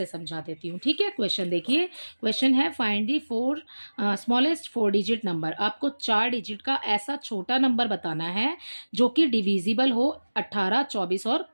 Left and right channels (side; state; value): both; inverted; correlation -1.00